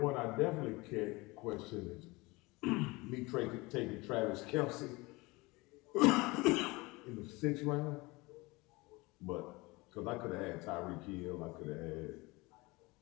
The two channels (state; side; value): quieter; right; 23.5 dB